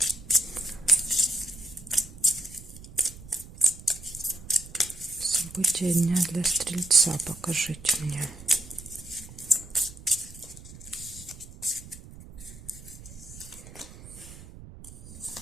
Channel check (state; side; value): noise; right; rumble, 17 dB below the sound